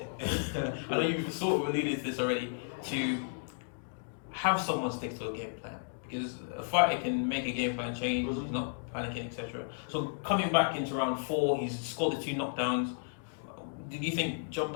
I know you've sort of alluded to this already, to have someone stick to a game plan, because a fighter can make a game plan change, he's not panicking, etc. So coming back into round 4, he's scored the 2 knockdowns. Did you think job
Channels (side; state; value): right; silent; digital silence